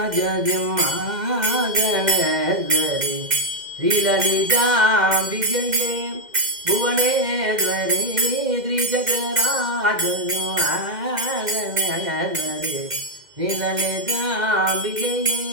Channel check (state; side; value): late; left; 2.0 ms